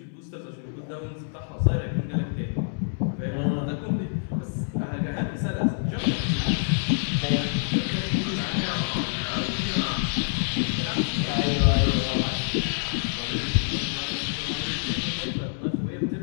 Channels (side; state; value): right; silent; digital silence